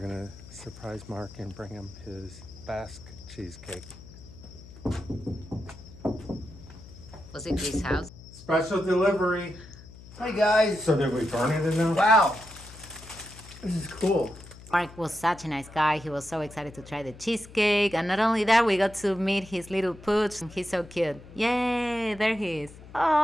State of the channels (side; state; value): left; noise; hum, 18 dB below the sound